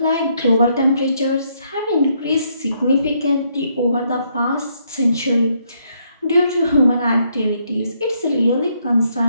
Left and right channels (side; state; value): both; inverted; correlation -0.73